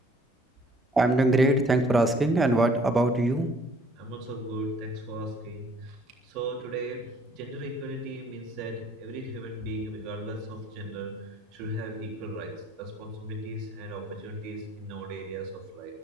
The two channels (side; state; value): both; normal; correlation 0.58